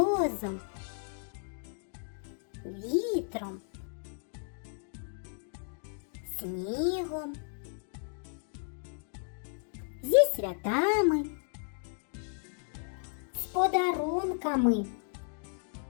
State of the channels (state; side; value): silent; right; 55 dB below the other